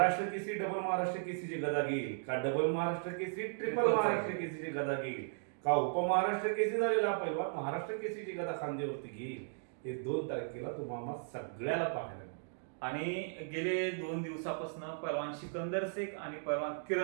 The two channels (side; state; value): left; silent; digital silence